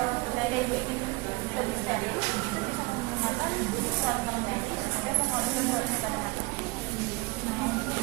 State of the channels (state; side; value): quieter; left; 24.8 dB